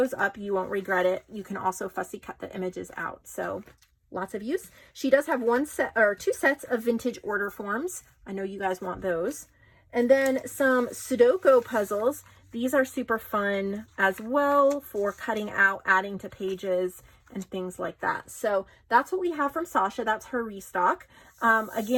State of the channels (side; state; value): both; identical; correlation 1.00